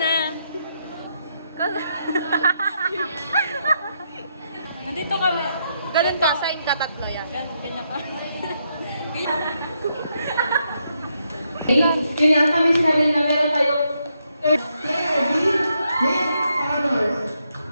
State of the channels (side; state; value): both; inverted; correlation -0.79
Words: Nandito kami. Ganun ka, sign ka tatlo yan. Ganyan pa. Yun nga, kami sinabi na meron tayong honors.